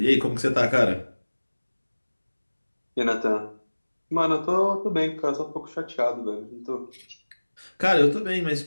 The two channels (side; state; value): both; inverted; correlation -1.00